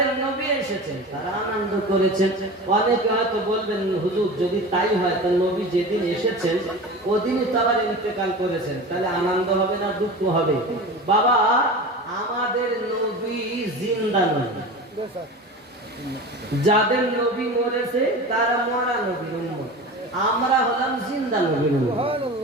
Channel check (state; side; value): normal; both; correlation 0.32